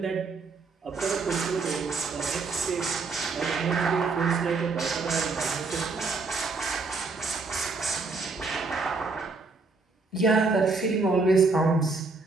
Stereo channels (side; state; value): left; quieter; 4.1 dB